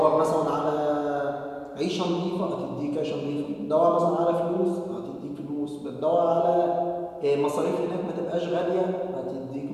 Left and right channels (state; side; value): identical; both; correlation 1.00